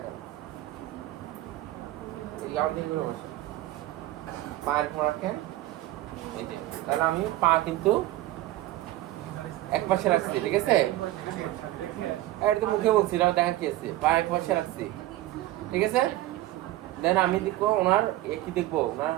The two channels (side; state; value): left; quieter; 15.9 dB